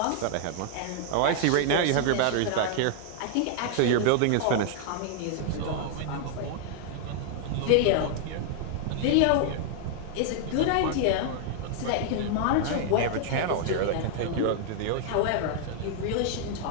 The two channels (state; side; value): different; both; correlation 0.00